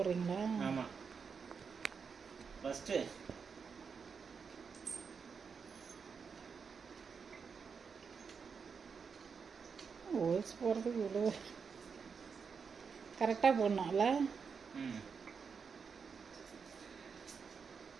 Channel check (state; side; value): quieter; left; 5.8 dB